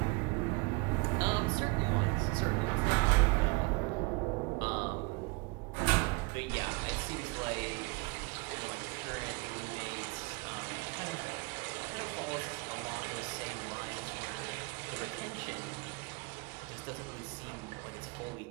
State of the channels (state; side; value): quieter; left; 27.2 dB